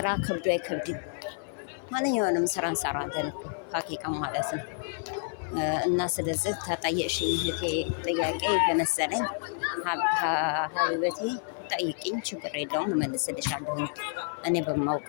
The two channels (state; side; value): silent; right; 56 dB below the other